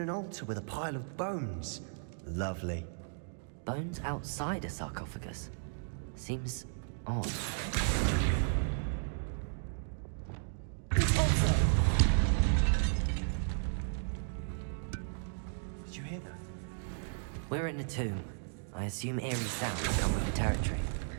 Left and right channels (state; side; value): silent; left; digital silence